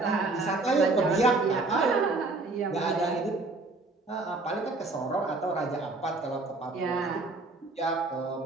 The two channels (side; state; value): left; quieter; 3.3 dB